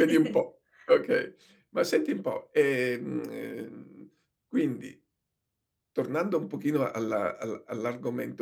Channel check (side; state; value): both; identical; correlation 1.00